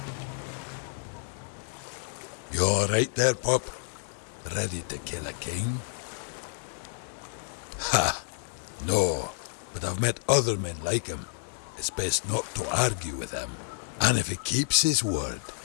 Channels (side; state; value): right; silent; 58 dB below the other